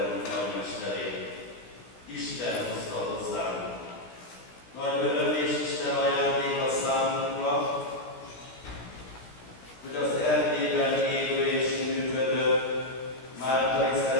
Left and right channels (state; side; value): late; right; 16 ms